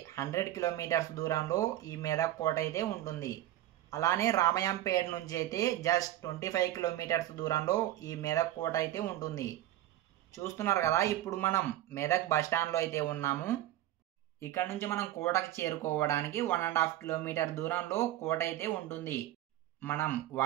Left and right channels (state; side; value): quieter; left; 13.7 dB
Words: 100 కిలోమీటర్స్ దూరంలో ఈ మెదక్ కోట అయితే ఉంటుంది. అలానే రామయంపేట నుంచి అయితే జస్ట్ 25 కిలోమీటర్స్ దూరంలో ఈ మెదక్ కోట అయితే ఉంటుంది. చూస్తున్నారు కదా, ఇప్పుడు మనం మెదక్ బస్టాండ్లో అయితే ఉన్నాము. ఇక్కడ నుంచి మనం కోటకి చేరుకోవడానికి 1.5 కిలోమీటర్ దూరంలో కోట అయితే ఉంటుంది. మనం